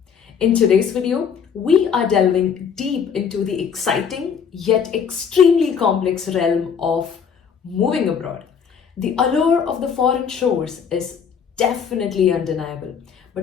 In today's video, we are delving deep into the exciting yet extremely complex realm of moving abroad. The allure of the foreign shores is definitely undeniable,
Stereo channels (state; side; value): quieter; right; 7.0 dB